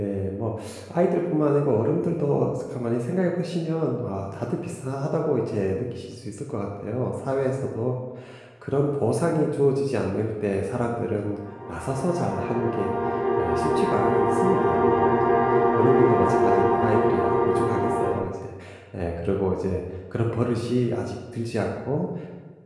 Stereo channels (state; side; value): identical; both; correlation 1.00